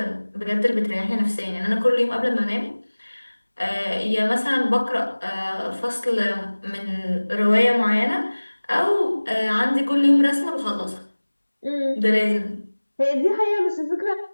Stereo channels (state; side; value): inverted; both; correlation -1.00